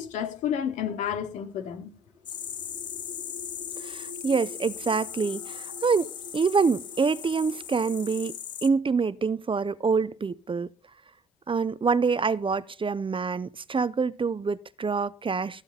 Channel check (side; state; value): left; quieter; 3.5 dB